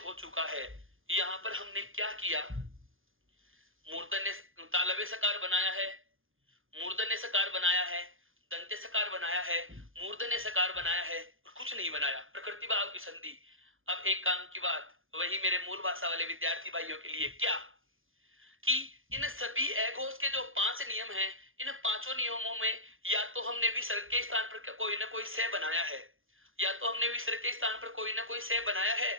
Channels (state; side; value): late; left; 0.59 ms